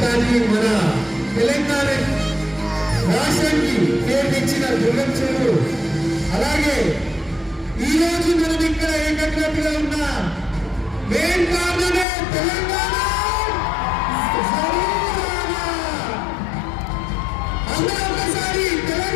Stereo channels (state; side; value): drops out; right; at 12.1 s